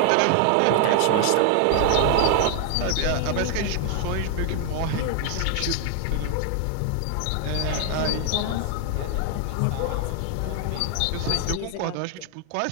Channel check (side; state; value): both; different; correlation 0.00